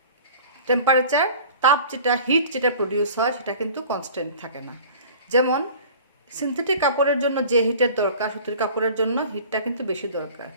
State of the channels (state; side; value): inverted; both; correlation -0.44